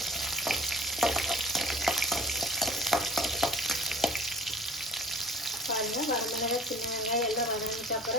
வரமிளகாய், சின்ன வெங்காயம் எல்லாம் வதங்கிட்டு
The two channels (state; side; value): normal; both; correlation 0.47